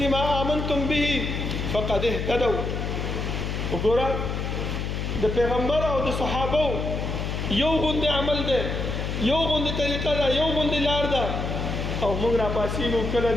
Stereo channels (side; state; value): left; noise; hum, 3 dB below the sound